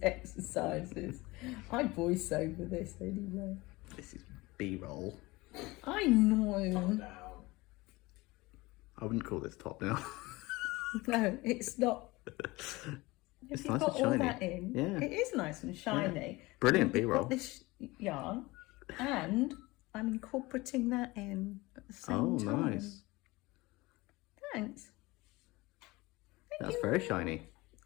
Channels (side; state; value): right; quieter; 21.7 dB